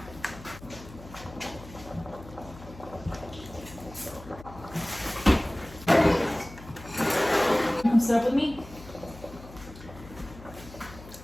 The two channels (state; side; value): noise; left; hum, 17 dB below the sound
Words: Come sit up with me.